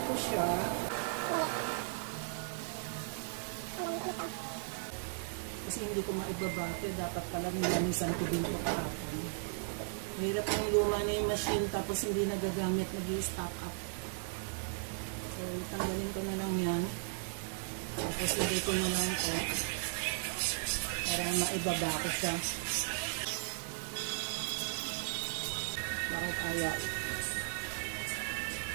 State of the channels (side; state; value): left; silent; digital silence